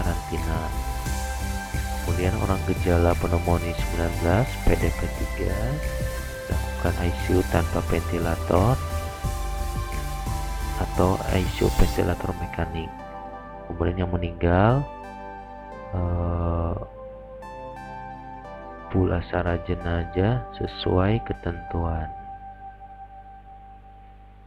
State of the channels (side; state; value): both; identical; correlation 1.00